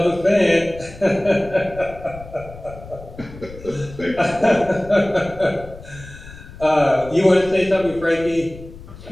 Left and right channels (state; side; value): noise; left; rumble, 16 dB below the sound